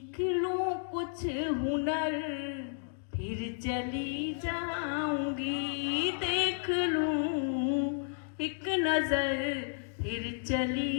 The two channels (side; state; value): right; silent; digital silence